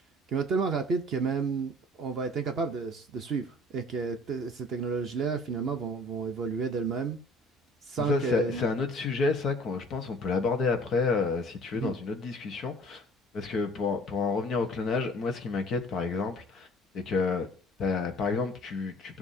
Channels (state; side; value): normal; both; correlation 0.50